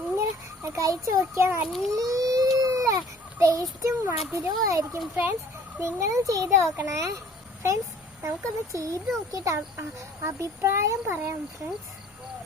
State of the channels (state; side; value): normal; both; correlation 0.53